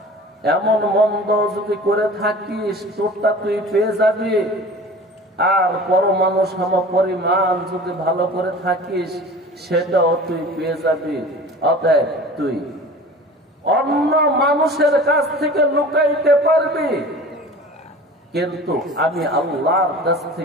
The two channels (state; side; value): normal; both; correlation 0.40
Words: এমন মন্দ যদি করে থাকিস তোরটা তুই পেয়ে যাবি, আর পরমাণু সম পরিমাণ যদি ভালো করে থাকিস সেটাও তুই পেয়ে যাবি। অতএব তুই অন্য মানুষের কাছ থেকে লুকাইতে পারবি, কিন্তু আমি আল্লাহর কাছ